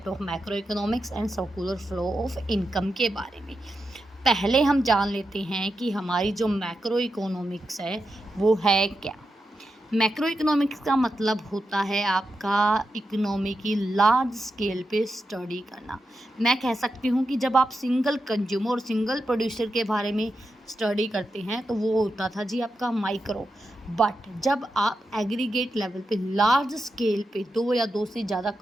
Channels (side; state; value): both; normal; correlation 0.88